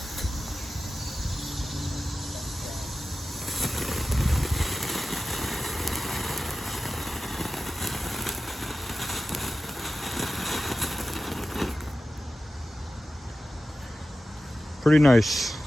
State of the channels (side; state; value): both; normal; correlation 0.94